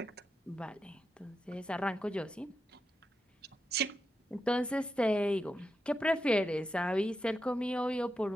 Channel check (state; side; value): normal; both; correlation 0.87